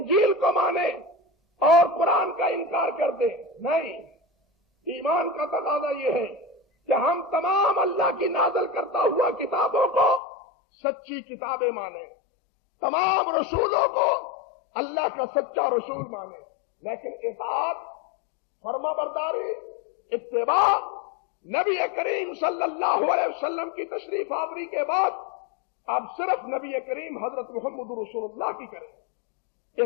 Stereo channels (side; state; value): right; drops out; at 10.2 s